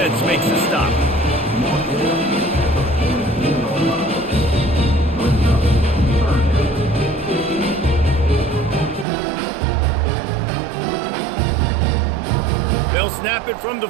makes the stop. They'll snap it from the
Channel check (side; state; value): left; drops out; at 9.1 s